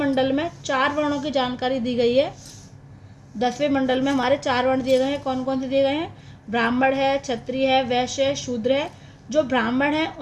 में 4 वर्णों की जानकारी दी गई है। 10वें मंडल में हमारे 4 वर्ण दिए गए हैं। कौन कौन से दिए गए हैं? ब्राह्मण है, क्षत्रिय है, वैश्य है, शूद्र है। जो ब्राह्मण है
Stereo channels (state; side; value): identical; both; correlation 1.00